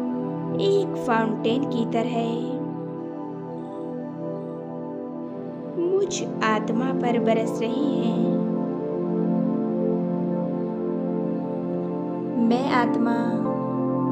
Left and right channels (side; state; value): both; identical; correlation 1.00